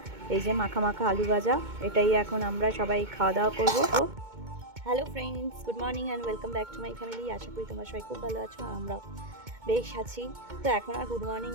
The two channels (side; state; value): left; late; 2.2 ms